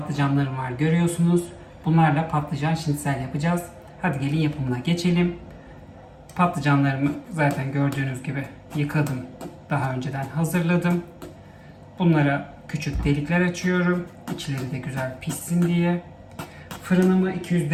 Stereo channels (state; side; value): identical; both; correlation 1.00